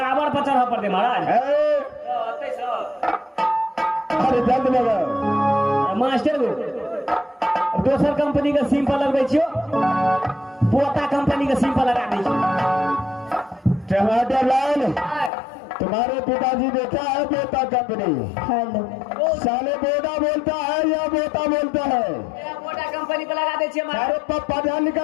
पर चढ़ा पड़ते महाराज। अरे जल्द लगाओ। मास्टर को दोसर कंपनी के सिम पर लगबै छियो, पोता कंपनी के सिम पर लगा दै छियो। टमाटर लाल, तुम्हारे पिताजी देखा है बोता कंपनी? हेलो साले बोदा बोलता है या बोता बोलता है? पोता कंपनी पे लगा दे छियै महाराज। अरे पढ़ा लिखा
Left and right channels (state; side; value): drops out; right; at 15.3 s